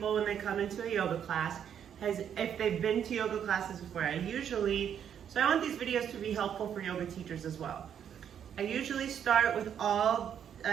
when they come into a yoga class is if they've been to yoga classes before. So I want these videos to be helpful for yoga teachers as well. I usually start with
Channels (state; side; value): quieter; left; 8.8 dB